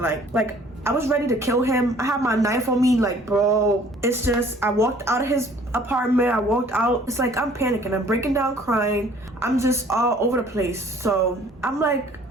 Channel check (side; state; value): both; normal; correlation 0.55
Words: I was ready to kill him. I had my knife on me, like, bro. It's just, I walked out of his apartment. I walked out. It's like, I'm panicking. I'm breaking down crying. I'm just all over the place. So I'm like,